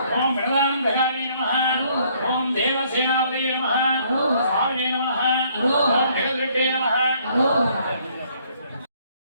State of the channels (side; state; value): both; inverted; correlation -0.65